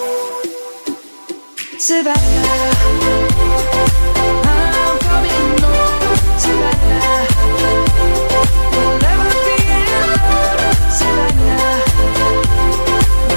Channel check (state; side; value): inverted; both; correlation -1.00